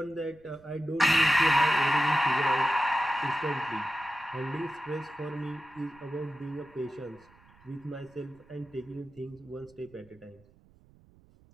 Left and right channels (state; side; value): noise; right; rumble, 28 dB below the sound